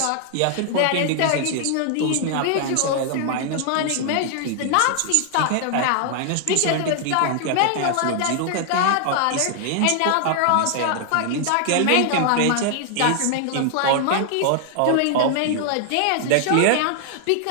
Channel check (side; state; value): both; different; correlation 0.00